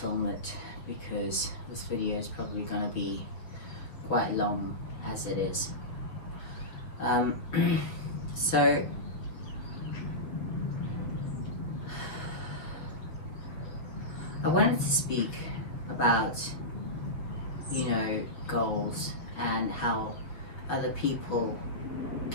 it because this video is probably going to be quite long as it is. So I wanted to speak about, you know, goals and how other people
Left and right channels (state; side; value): late; right; 6.5 ms